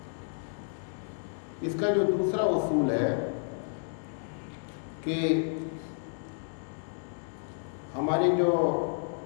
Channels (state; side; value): silent; right; digital silence